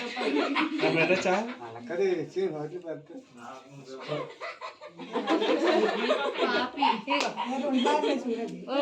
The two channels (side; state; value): both; identical; correlation 1.00